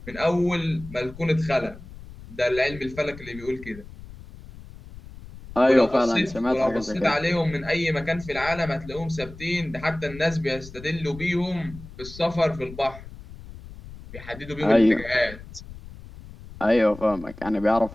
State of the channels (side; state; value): left; noise; rumble, 16 dB below the sound